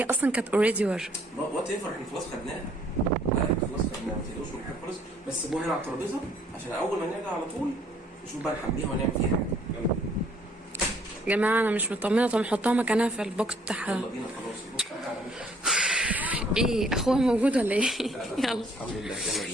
اصلا كانت اوريدي ور. وات ايفر. احنا خلاص خدناها. لا احنا خلاص خدناها. ما تقلقوش من حاجه خالص. بس سيبوها هنا على الترابيزه عشان اول ما نرجع على طول نشوف بقى نحميها ونعمل فيها حاجه. يلا يا جماعه انا مش مطمنه. طب نحطها مكانها في البوكس بتاعها. يلا بينا خلاص. ايه اخوها موجود ولا ايه؟ يلا الحمد لله. يلا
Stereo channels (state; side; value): normal; both; correlation 0.62